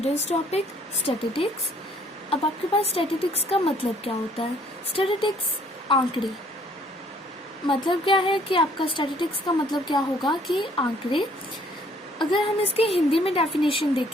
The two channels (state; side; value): normal; both; correlation 0.62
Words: topic statistics. अब आपके पास स्टैटिस्टिक्स का मतलब क्या होता है? स्टैटिस्टिक्स आंकड़े। मतलब क्या है कि आपका स्टैटिस्टिक्स का मतलब क्या होगा कि आंकड़े। अगर हम इसके हिंदी में डेफिनेशन